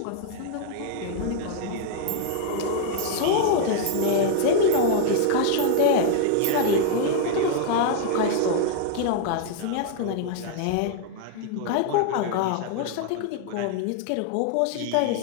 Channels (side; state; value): both; different; correlation 0.00